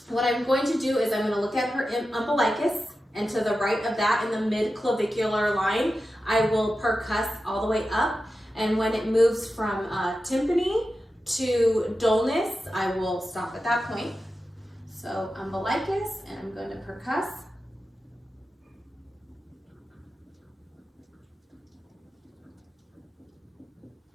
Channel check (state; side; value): normal; both; correlation 0.92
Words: What I'm going to do is I'm going to look at her umbilicus, and to the right of that in the mid-clavicular line, I will percuss all the way up. And when it moves from tympany to dullness, I will stop at that point. So umbilicus, and I'm going to percuss.